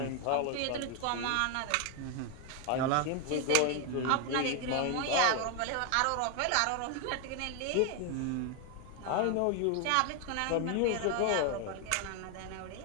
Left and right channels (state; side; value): different; both; correlation 0.01